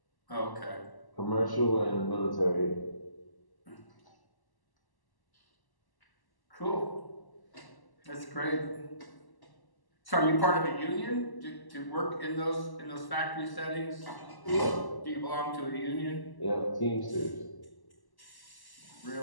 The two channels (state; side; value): late; right; 1.1 ms